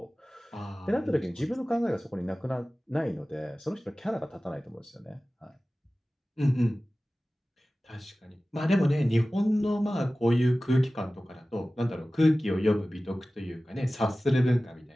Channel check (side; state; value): both; normal; correlation 0.96